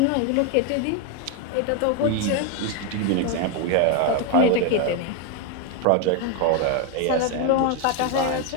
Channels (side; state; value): both; different; correlation 0.01